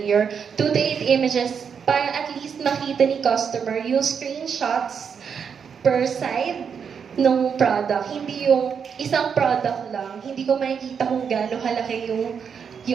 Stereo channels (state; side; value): quieter; left; 6.8 dB